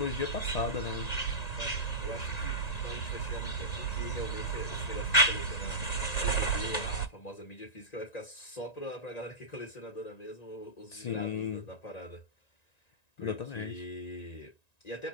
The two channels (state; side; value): late; right; 1.9 ms